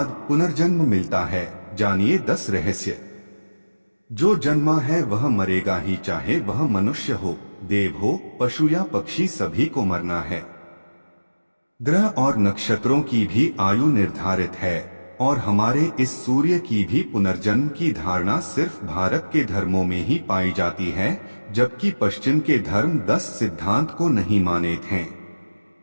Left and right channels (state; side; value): inverted; both; correlation -1.00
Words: पुनर्जन्म मिलता है? जानिए 10 रहस्य। जो जन्मा है वह मरेगा ही, चाहे वह मनुष्य हो, देव हो, पशु या पक्षी, सभी को मरना है। ग्रह और नक्षत्रों की भी आयु निर्धारित है और हमारे इस सूर्य की भी पुनर्जन्म की धारणा सिर्फ भारत के धर्मों में ही पाई जाती है, जबकि पश्चिम के धर्म 10 सिद्धांत को नहीं मानते हैं।